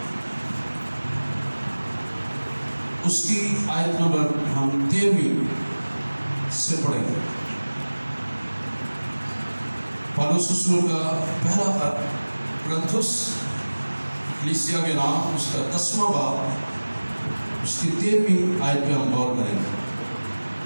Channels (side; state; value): both; inverted; correlation -1.00